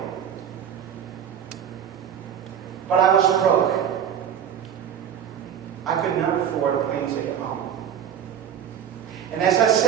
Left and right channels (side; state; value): left; quieter; 8.9 dB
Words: But I was broke. I could not afford a plane ticket home. And as I